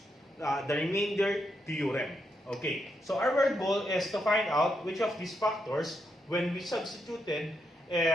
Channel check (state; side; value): normal; both; correlation 0.81